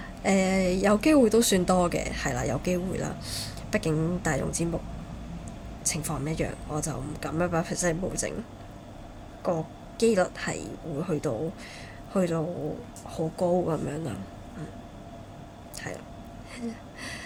有機會都算多嘅，係啦，有機會啦。畢竟大眾占卜情況唔一樣，我就唔敢100%保證個機率係會去到好高咁樣啦。係啦，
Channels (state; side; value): identical; both; correlation 1.00